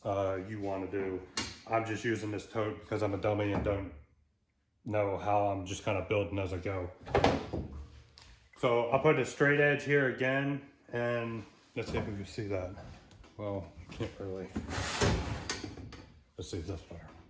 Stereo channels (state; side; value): identical; both; correlation 1.00